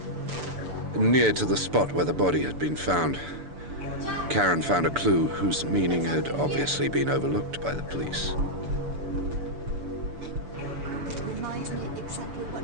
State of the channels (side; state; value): left; late; 6.9 ms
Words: Near to the spot where the body had been found, Karen found a clue whose meaning had obviously been overlooked by the police. It reminds me exactly what